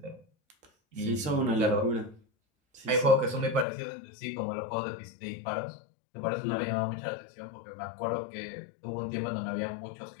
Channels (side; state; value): right; drops out; at 3.7 s